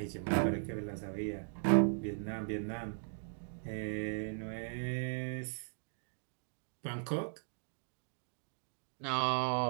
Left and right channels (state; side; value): silent; left; digital silence